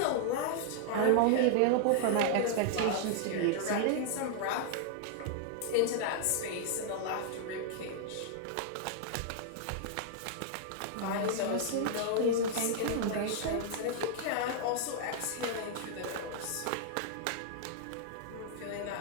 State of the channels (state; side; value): different; both; correlation -0.01